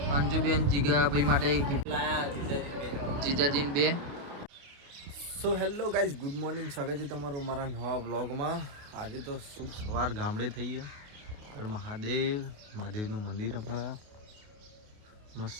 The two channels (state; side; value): late; left; 28 ms